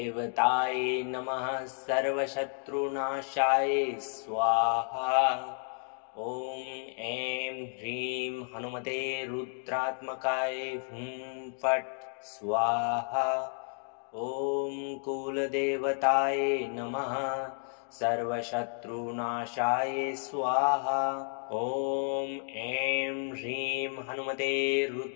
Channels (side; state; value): right; silent; 56 dB below the other